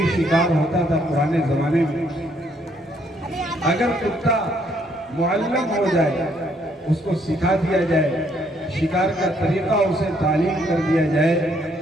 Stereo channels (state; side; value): normal; both; correlation 0.69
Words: شکار ہوتا تھا پرانے زمانے میں۔ اگر کتا معلم ہو جائے، اس کو سکھا دیا جائے، شکار کا طریقہ اسے تعلیم کر دیا جائے